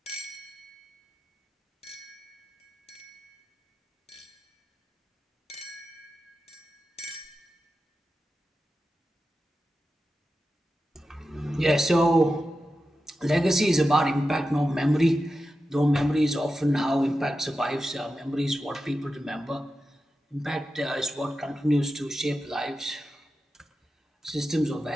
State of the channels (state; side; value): normal; both; correlation 0.91